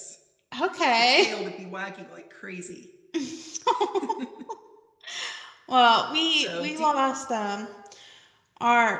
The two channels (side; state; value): both; identical; correlation 1.00